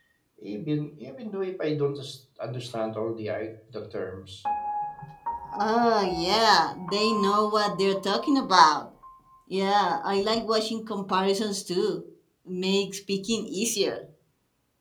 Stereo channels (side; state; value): both; identical; correlation 1.00